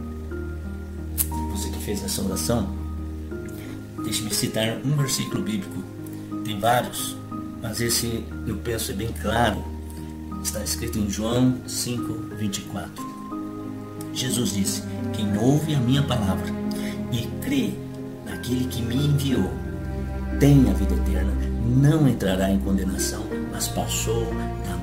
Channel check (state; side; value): identical; both; correlation 1.00